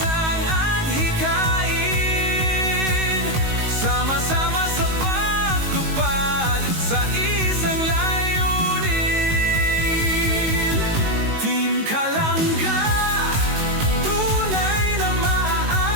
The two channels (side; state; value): left; late; 19 ms